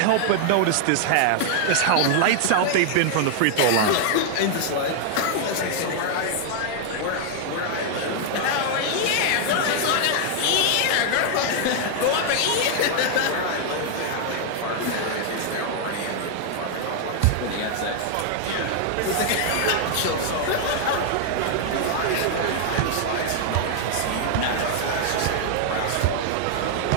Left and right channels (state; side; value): different; both; correlation 0.00